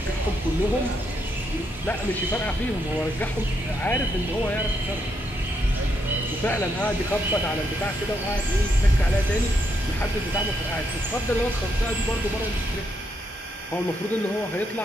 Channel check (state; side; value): normal; both; correlation 0.78